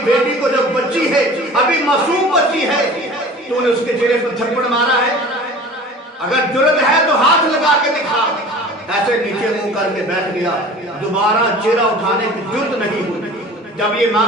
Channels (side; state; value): both; normal; correlation 0.42